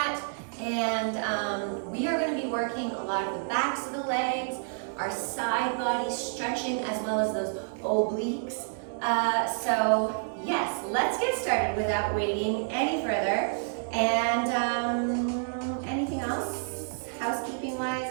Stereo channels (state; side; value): silent; left; digital silence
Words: And we are going to be working a lot of the backs of the legs, our side body stretching, as well as those obliques. So yes, let's get started without waiting any further. And anything else housekeeping wise